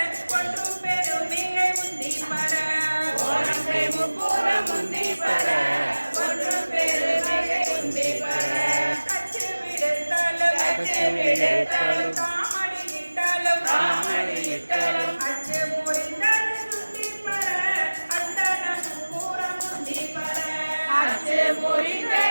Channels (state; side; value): inverted; both; correlation -1.00